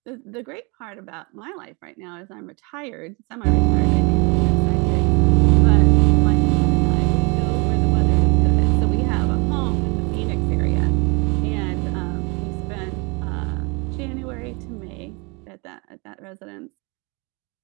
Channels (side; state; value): left; quieter; 30.0 dB